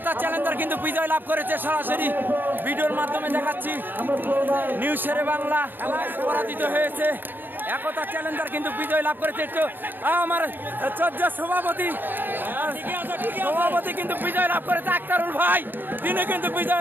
চ্যালেঞ্জার কিন্তু বিজয় লাভ করেছে, সরাসরি ভিডিওর মাধ্যমে দেখাচ্ছি। নিউ শেরে বাংলা পরাজিত হয়েছে, একতা চ্যালেঞ্জার কিন্তু বিজয় লাভ করেছে। একটু আমার চর্যা সভাপতি কিন্তু বিজয় লাভ করেছে, আক্তারুল ভাই তিনি কিন্তু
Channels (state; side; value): late; left; 0.093 ms